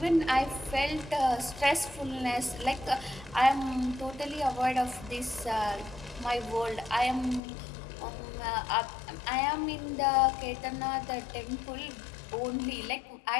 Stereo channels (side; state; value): right; drops out; at 7.4 s